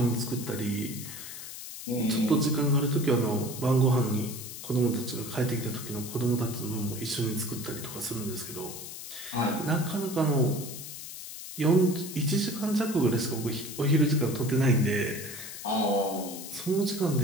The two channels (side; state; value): left; noise; hiss, 10 dB below the sound